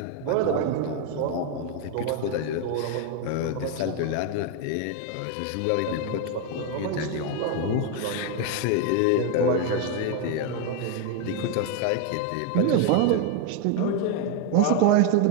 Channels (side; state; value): both; different; correlation 0.01